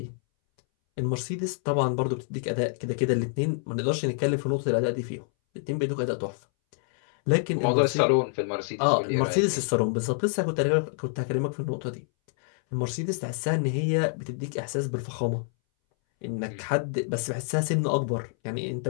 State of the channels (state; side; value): silent; right; 60 dB below the other